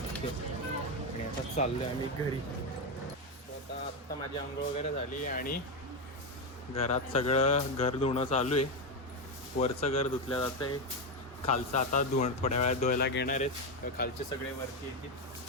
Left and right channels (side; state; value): both; normal; correlation 0.09